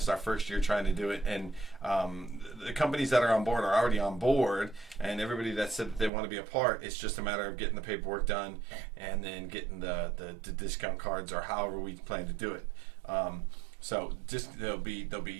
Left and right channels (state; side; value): drops out; left; at 6.1 s